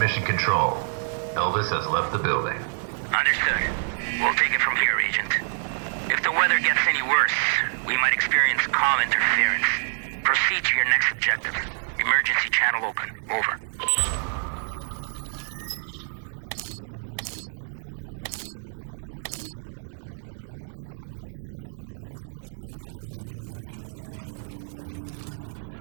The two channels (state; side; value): silent; left; digital silence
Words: control. Elvis has left the building. Understood. We'll take it from here, Agent. If the weather gets any worse, we might experience comm interference. Proceed to your next objective. Emergency channel open. Over.